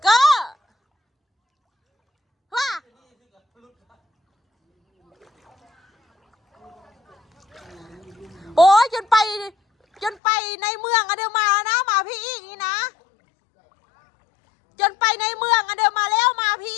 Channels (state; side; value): drops out; right; at 10.2 s